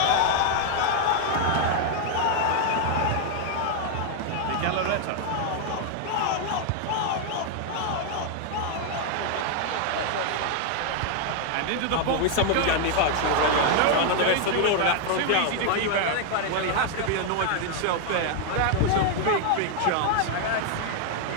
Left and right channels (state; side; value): different; both; correlation 0.00